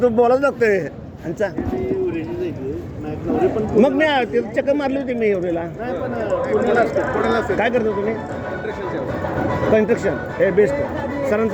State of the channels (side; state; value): both; identical; correlation 1.00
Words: बोलाच लागतोय आमचा मग मी चक्कर मारली होती मी एवढेला काय करता तुम्ही कन्स्ट्रक्शन हे बेस्ट